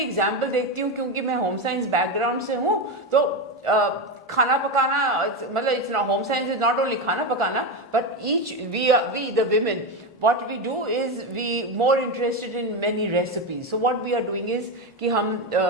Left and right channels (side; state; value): both; normal; correlation 0.14